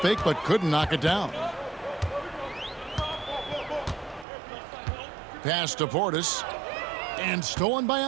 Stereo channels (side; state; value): left; drops out; at 4.2 s